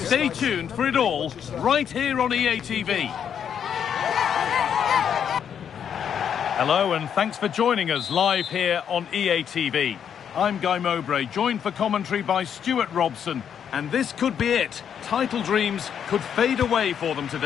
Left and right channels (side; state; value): right; quieter; 8.3 dB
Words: tuned for it all, right here on EA TV. Hello and thanks for joining us live here on EA TV. I'm Guy Mowbray, joined for commentary by Stuart Robson. And this could be it. Title dreams could fade away for them